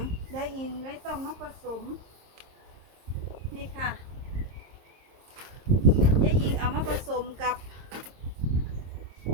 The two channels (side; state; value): left; late; 26 ms